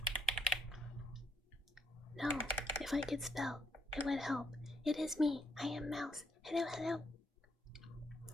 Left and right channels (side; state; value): both; normal; correlation 0.74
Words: No, if I could spell, it would help. It is me. I am Mouse. Hello.